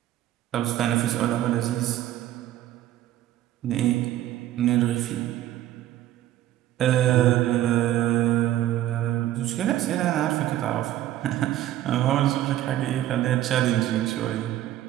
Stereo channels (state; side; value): quieter; left; 13.2 dB